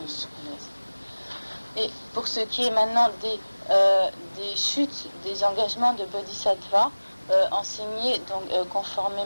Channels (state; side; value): inverted; both; correlation -1.00